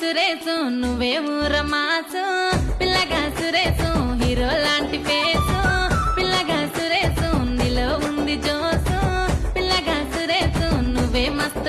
సురేసు నువ్వే ఊరమాసు పిల్లగా సురేసు హీరో లాంటి ఫేసు పిల్లగా సురేసు నీలో ఉంది జోసు పిల్లగా సురేసు నువ్వే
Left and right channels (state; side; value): identical; both; correlation 1.00